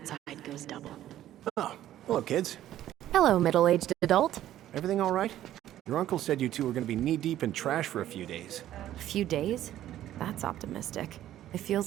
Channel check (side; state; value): left; quieter; 12.7 dB